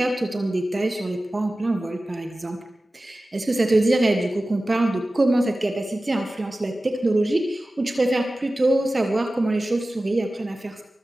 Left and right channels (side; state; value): both; normal; correlation 0.96